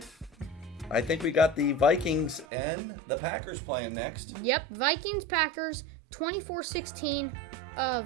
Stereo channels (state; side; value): drops out; left; at 2.5 s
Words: I think we got the Vikings and the Packers playing next. Yep. Vikings-Packers, 24-16